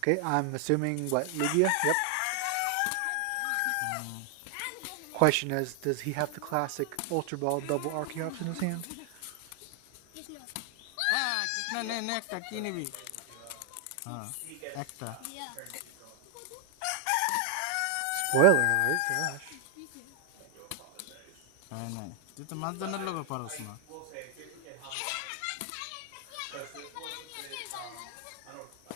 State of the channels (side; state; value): both; different; correlation 0.00